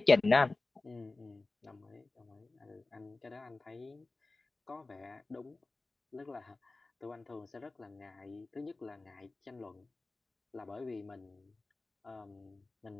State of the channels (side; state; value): right; quieter; 3.3 dB